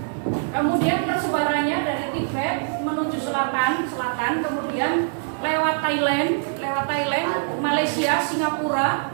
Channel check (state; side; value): silent; left; 59 dB below the other